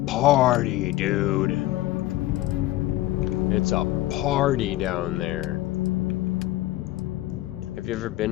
party, dude. It's a party down there. Have you ever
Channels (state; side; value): quieter; right; 16.4 dB